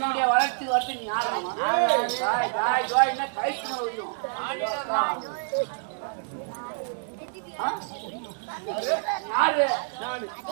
வளர்ச்சிக்கு வரது நீ யாராமா? என்ன கைக்கு மேல வைக்கும் யாரு?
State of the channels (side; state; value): left; silent; 60 dB below the other